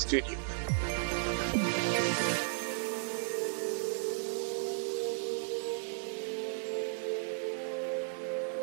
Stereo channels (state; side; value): silent; left; digital silence